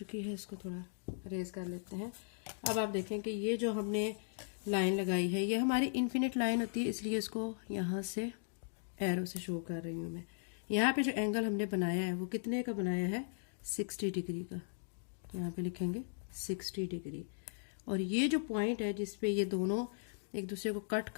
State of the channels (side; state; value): right; silent; digital silence